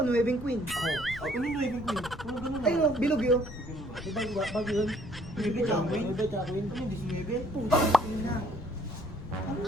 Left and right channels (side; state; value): left; noise; rumble, 13 dB below the sound